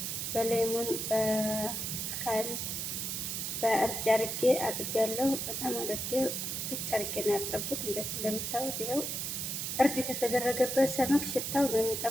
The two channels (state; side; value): noise; right; hiss, 3 dB below the sound